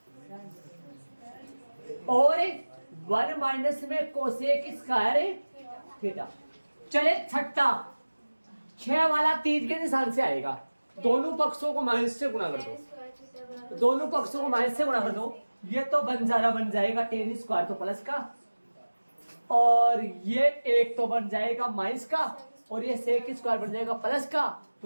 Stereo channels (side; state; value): both; inverted; correlation -1.00